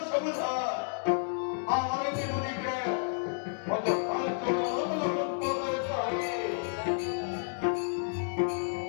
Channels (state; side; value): silent; right; digital silence